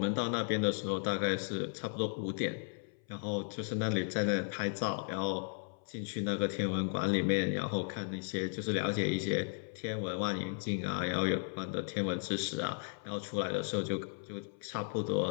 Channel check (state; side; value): silent; right; 54 dB below the other